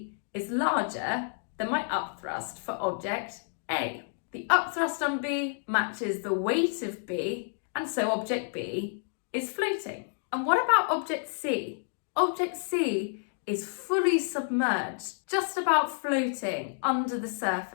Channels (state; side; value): silent; right; digital silence